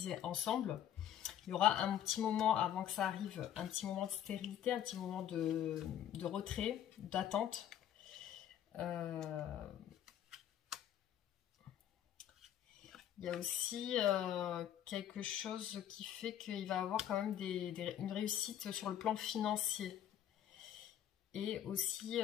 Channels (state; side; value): quieter; right; 10.5 dB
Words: ensemble. Il y aura un petit moment avant que ça arrive, un petit moment de stérilité, un petit moment de retrait, d'attente. Il Il y a aussi quelque chose qui fait qu'il va avoir quand même une réussite sur le plan financier. Et aussi